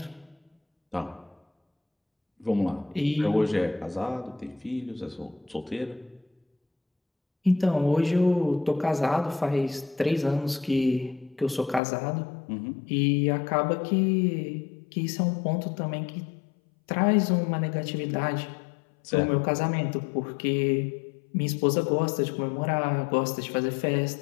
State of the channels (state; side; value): drops out; right; at 11.8 s